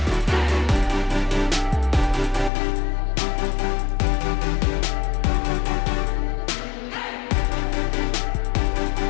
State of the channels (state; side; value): drops out; right; at 2.5 s